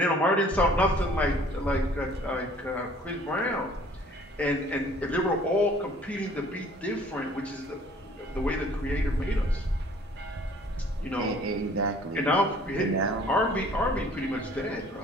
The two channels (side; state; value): both; normal; correlation 0.54